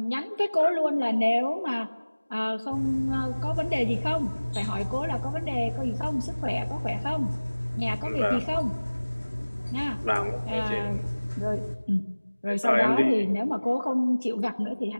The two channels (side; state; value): both; inverted; correlation -1.00